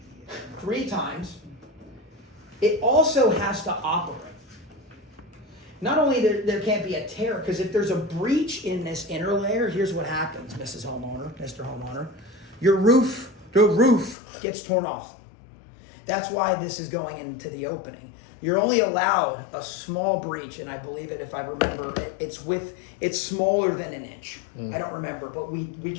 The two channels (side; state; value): right; drops out; at 14.2 s